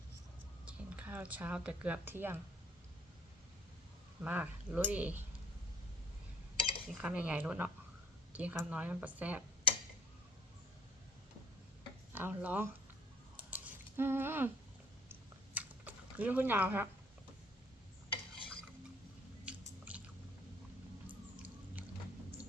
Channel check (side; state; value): both; normal; correlation 0.58